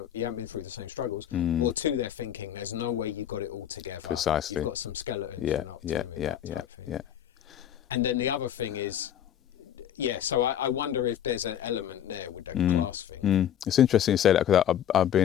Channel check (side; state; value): right; quieter; 10.3 dB